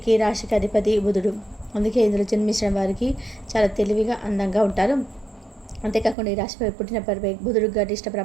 ఈ రాశికి అధిపతి బుధుడు. అందుకే ఇందులో జన్మించిన వారికి చాలా తెలివిగా అందంగా ఉంటారు. అంతేకాకుండా ఈ రాశిపై పుట్టిన బుధుడు గరిష్ట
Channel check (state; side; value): drops out; left; at 6.2 s